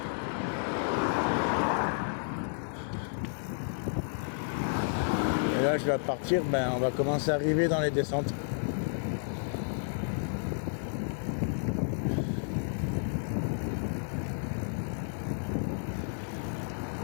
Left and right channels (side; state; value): right; silent; digital silence